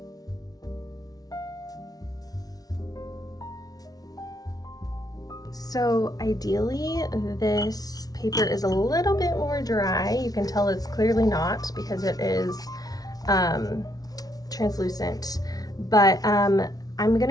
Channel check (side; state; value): right; late; 0.18 ms